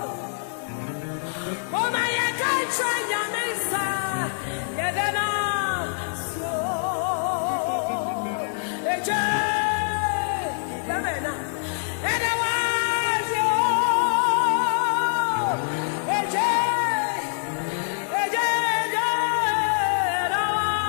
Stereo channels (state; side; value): silent; right; 62 dB below the other